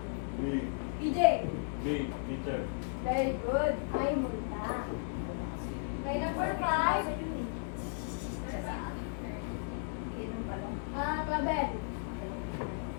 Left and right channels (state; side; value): silent; right; digital silence